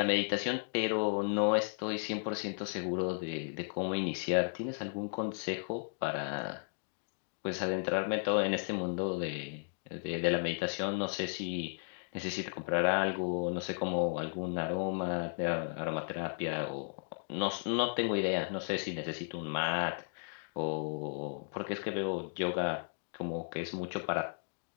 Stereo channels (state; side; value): silent; right; digital silence